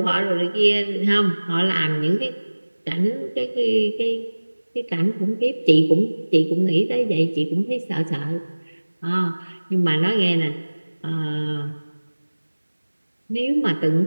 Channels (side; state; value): both; inverted; correlation -1.00